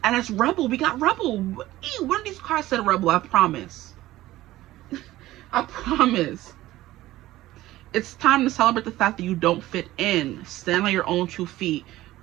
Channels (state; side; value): quieter; left; 16.1 dB